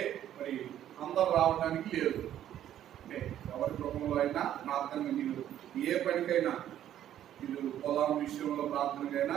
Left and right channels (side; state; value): left; quieter; 11.3 dB